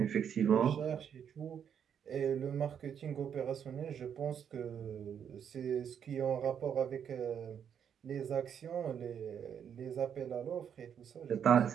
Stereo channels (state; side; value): quieter; left; 8.2 dB